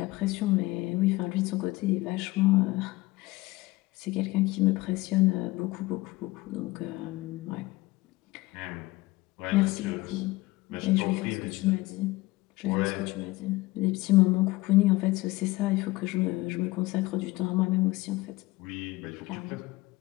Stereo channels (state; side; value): quieter; right; 20.3 dB